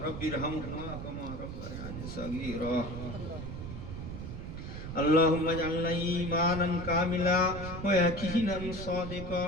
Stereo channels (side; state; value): right; noise; rumble, 8 dB below the sound